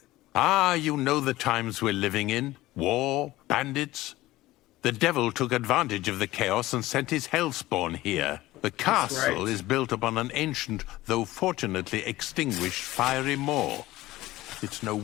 Ah, you know the times we're living in. War, bandits. The devil took advantage of the chaos and sent his hellspawn here. The castle is built upon an ancient, though fortunately extinguished, fiery moor. It's no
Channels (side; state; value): right; quieter; 17.3 dB